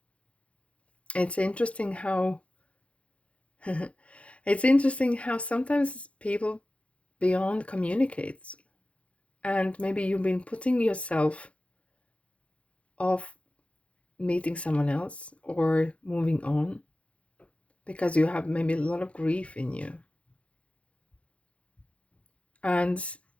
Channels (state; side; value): late; right; 0.062 ms